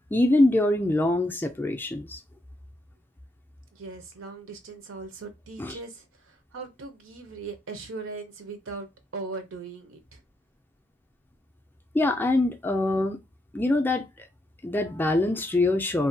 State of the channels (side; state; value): both; normal; correlation 0.80